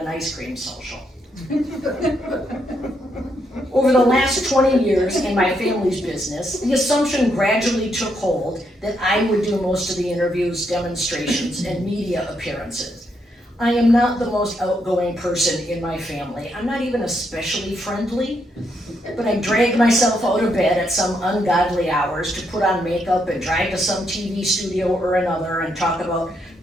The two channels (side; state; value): both; normal; correlation 0.77